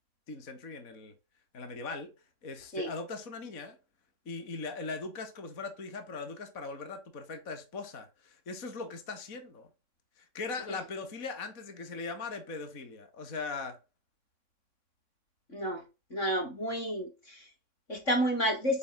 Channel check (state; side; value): late; right; 3.6 ms